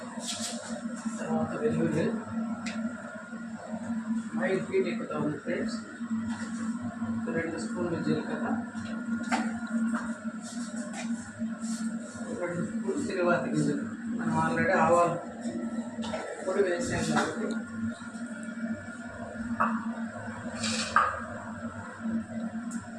తర్వాత వెల్లుల్లి 5 ఫీట్ ఎక్కుతా ఉంది ఫ్రెండ్స్. 2 స్పూన్లు జీలకర్ర, 2 స్పూన్లు తిరువాతి గింజలు. మనం ఆల్రెడీ ఆవాలు పొడి వేసాం కాబట్టి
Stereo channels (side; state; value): both; identical; correlation 1.00